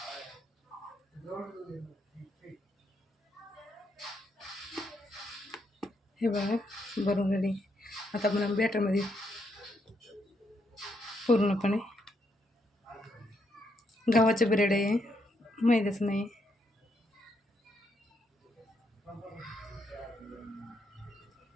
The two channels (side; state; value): both; normal; correlation 0.77